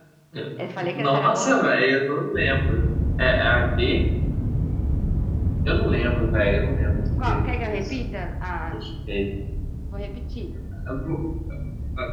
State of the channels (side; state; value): both; identical; correlation 1.00